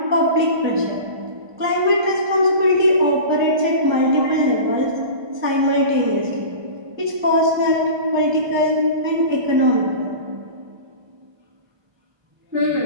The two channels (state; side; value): late; left; 1.2 ms